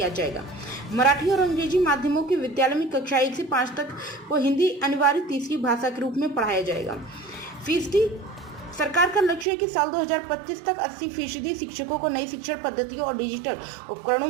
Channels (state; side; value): drops out; left; at 9.5 s